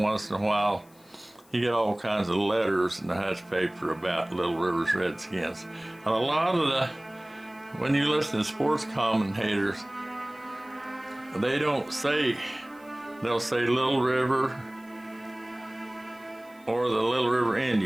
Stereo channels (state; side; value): noise; left; hiss, 29 dB below the sound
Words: in a while, you get all kinds of letters in the hush paper about Little River's Redskins. And a lot of when you listen to sports commentators, they don't say, they'll say Little River or the Little River